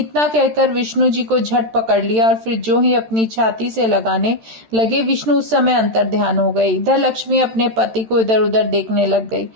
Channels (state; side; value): late; left; 13 ms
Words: कहकर विष्णु जी को झट पकड़ लिया और फिर जो ही अपनी छाती से लगाने लगे, विष्णु उस समय अंतर ध्यान हो गए। इधर लक्ष्मी अपने पति को इधर उधर देखने लग गई।